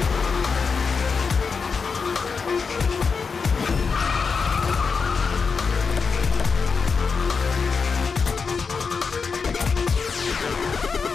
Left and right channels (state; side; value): quieter; right; 5.2 dB